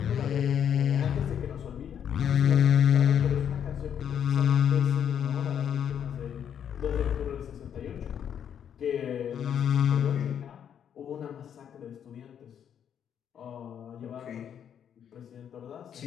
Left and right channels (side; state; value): right; quieter; 8.7 dB